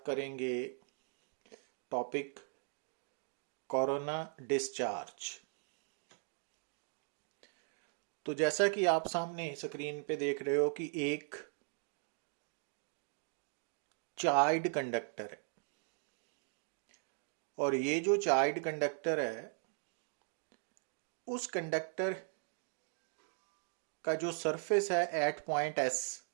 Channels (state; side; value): silent; left; 52 dB below the other